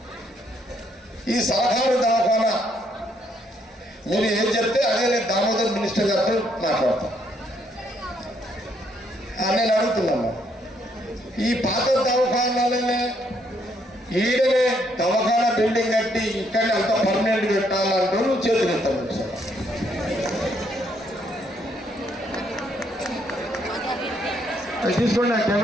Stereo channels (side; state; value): both; normal; correlation 0.71